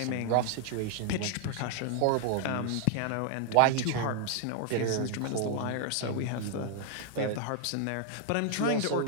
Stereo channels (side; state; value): both; different; correlation 0.00